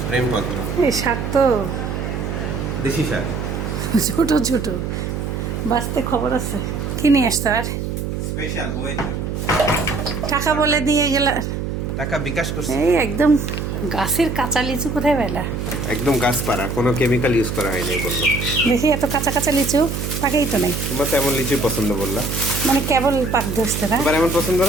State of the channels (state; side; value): noise; right; hum, 3 dB below the sound